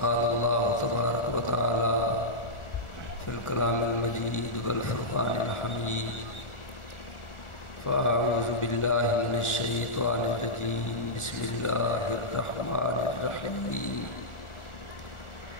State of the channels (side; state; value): right; late; 1.4 ms